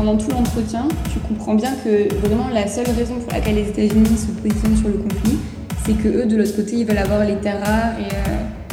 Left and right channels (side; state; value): both; identical; correlation 1.00